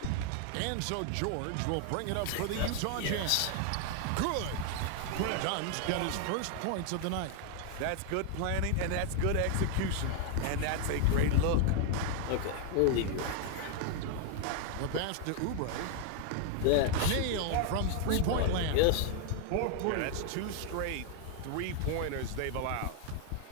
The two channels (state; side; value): different; both; correlation 0.00